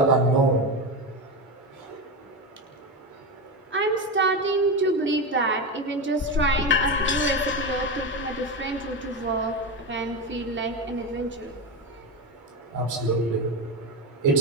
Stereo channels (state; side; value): normal; both; correlation 0.17